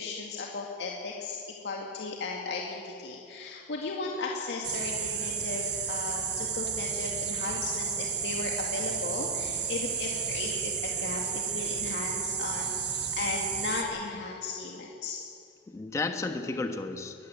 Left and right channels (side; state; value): both; normal; correlation -0.03